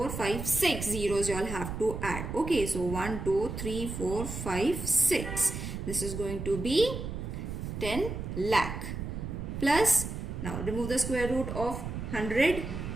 5 6 zeros you all have to add. Okay, so 1 2 3 4 5 6, this is going to be 10 lakh plus, now remove the square root of 100.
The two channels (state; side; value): noise; right; rumble, 6 dB below the sound